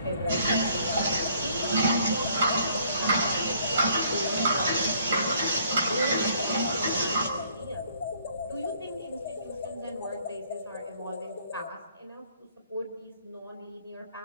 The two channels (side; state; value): both; inverted; correlation -0.62